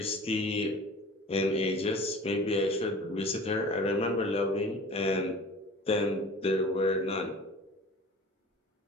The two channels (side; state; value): both; normal; correlation 0.42